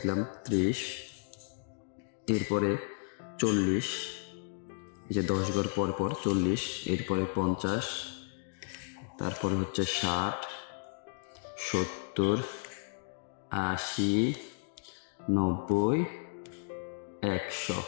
30, এরপরে 40, এই যে 10 ঘর পর পর 40, এরপরে 50, তারপরে হচ্ছে 60, 70, 80, 90, 100।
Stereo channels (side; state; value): right; silent; digital silence